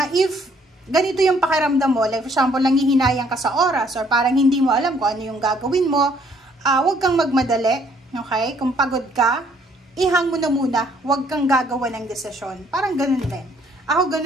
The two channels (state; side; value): normal; both; correlation 0.64